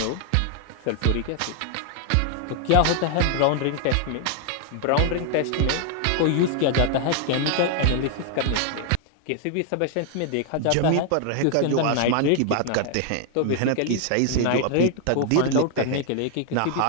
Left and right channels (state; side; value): different; both; correlation 0.00